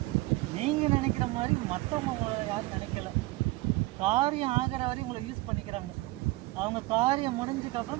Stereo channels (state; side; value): quieter; left; 20.7 dB